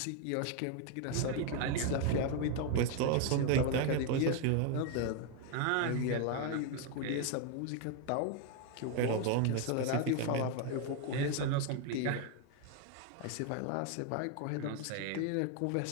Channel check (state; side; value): different; both; correlation 0.01